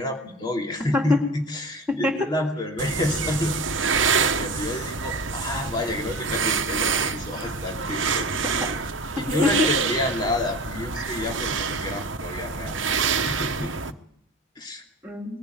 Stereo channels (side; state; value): both; normal; correlation 0.33